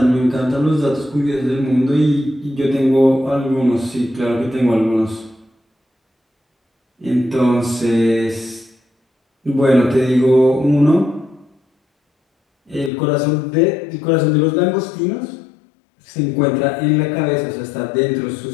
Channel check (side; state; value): right; drops out; at 12.9 s